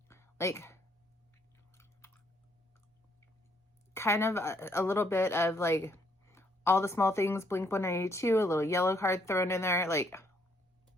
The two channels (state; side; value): normal; both; correlation 0.71